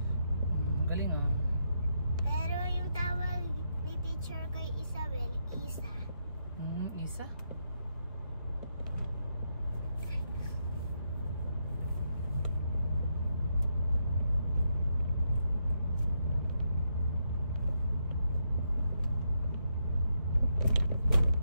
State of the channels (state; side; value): inverted; both; correlation -0.80